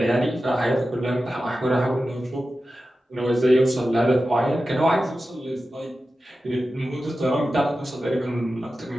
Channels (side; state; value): both; normal; correlation 0.93